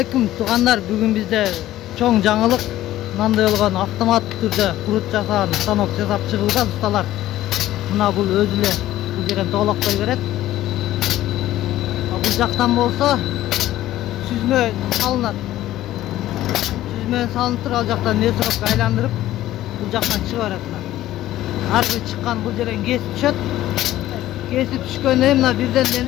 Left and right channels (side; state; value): right; quieter; 14.3 dB